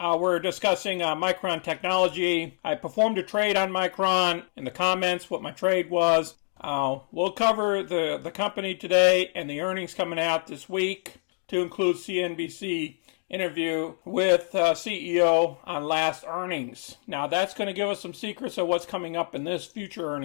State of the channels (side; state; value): right; silent; digital silence